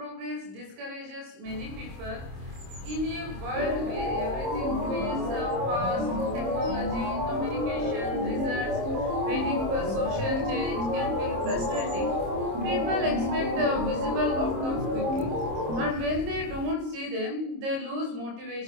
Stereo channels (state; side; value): late; left; 26 ms